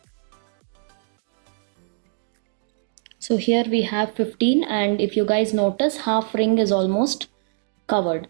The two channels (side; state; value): left; silent; digital silence